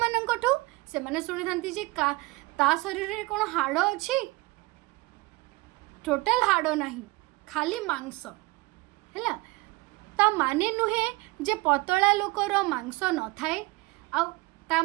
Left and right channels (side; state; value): left; quieter; 22.7 dB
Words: माननकठू से माने सुनी थांती जे का ता शरीर रे कोन हाड़ अछि टोटल हाड़ नहीं खाली मांस हैला ता माने नुहे जे पतला लोकर मांस न थाए आ ता